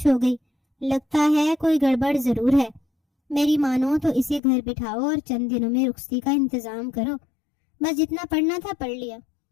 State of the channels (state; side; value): drops out; right; at 4.4 s